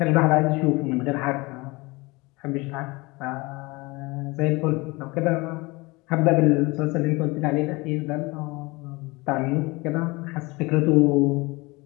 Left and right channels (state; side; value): quieter; right; 24.2 dB